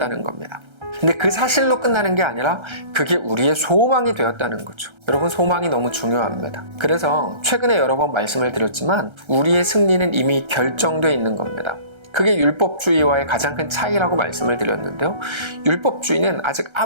겁니다. 근데 그 사실로 끝나는 게 아니라 그게 우리의 소망이 되었다는 거죠. 여러분, 소망이 너무 중요합니다. 그래서 최근에 여러 번 말씀을 드렸지만 우리의 승리는 이미 결정되어 있는 겁니다. 그게 율법주의와의 가장 큰 차이라고 말씀을 드렸는데요. 율법주의는 아직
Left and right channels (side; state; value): left; late; 1.3 ms